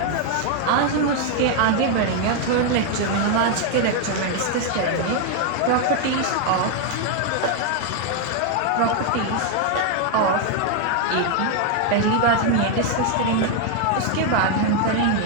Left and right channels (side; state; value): both; different; correlation 0.01